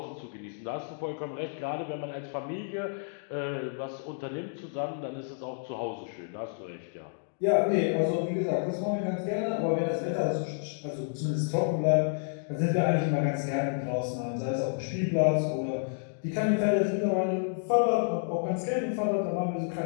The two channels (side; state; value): right; silent; digital silence